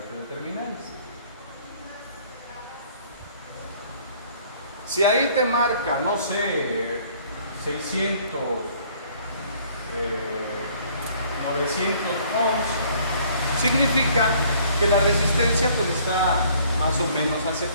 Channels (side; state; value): both; inverted; correlation -0.59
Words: de terminales. Si ahí te marca, no sé, 600, 900 ohms, significa que la resistencia pues está más o menos